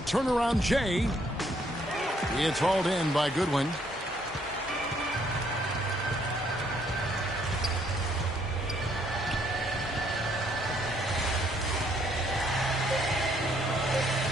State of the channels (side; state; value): both; normal; correlation 0.68